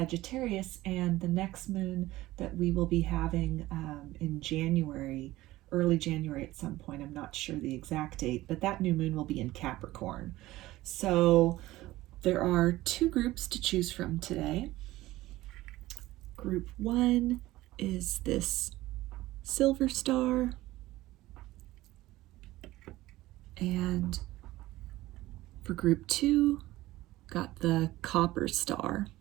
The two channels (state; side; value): quieter; left; 17.2 dB